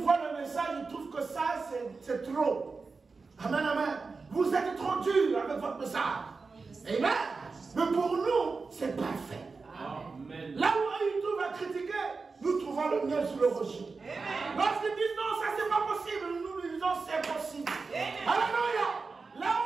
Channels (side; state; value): left; quieter; 4.4 dB